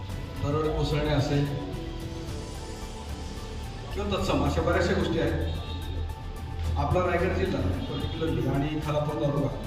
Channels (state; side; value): identical; both; correlation 1.00